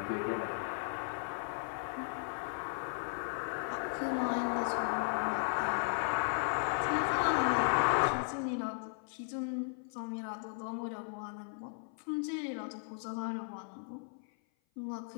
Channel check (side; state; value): right; silent; 54 dB below the other